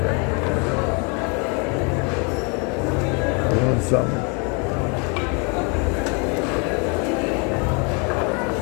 You want some?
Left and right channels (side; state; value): right; quieter; 33.7 dB